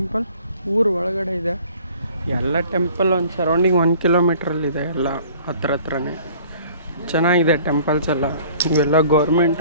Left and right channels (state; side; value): inverted; both; correlation -0.52